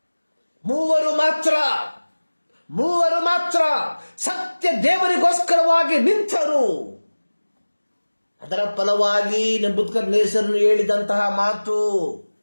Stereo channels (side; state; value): both; inverted; correlation -1.00